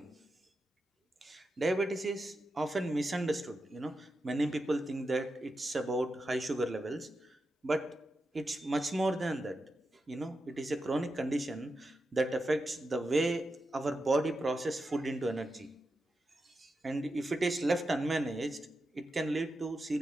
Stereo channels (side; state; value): both; normal; correlation 0.89